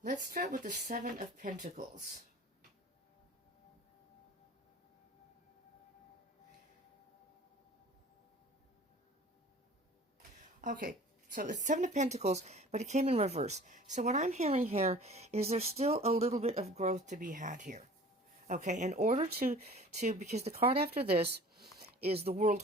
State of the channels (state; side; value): normal; both; correlation 0.45